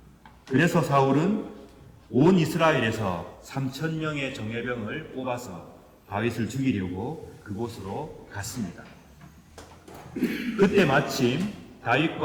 그래서 사울은 온 이스라엘에서 3,000명의 정예병을 뽑아서 다윗을 죽이려고 그곳으로 갔습니다. 그때 마침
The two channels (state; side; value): identical; both; correlation 1.00